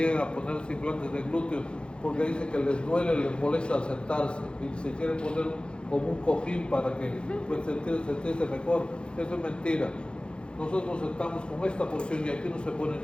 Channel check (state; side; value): late; right; 0.054 ms